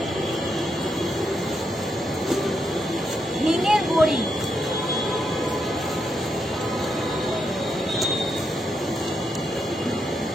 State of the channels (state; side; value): normal; both; correlation 0.81